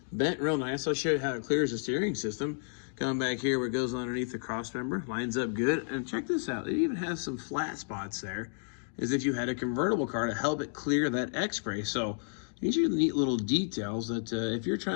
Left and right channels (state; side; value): silent; right; digital silence